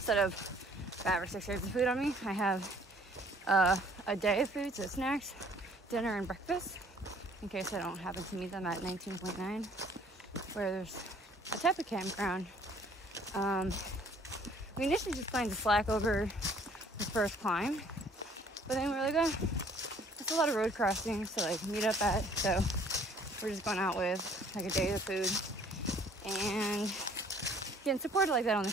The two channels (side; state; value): both; normal; correlation 0.57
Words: of 5 or 6 grams of food on me, I have a day of food, so snacks, dinner, and breakfast, in case I don't happen to meet them at 19.9. Where there's a type of campground. We initially just planned to slack over the first climb, but then we were like, oh, there's a lot of road crossings to like meet up at, so we're just going out with like a day of food and getting supported like that on the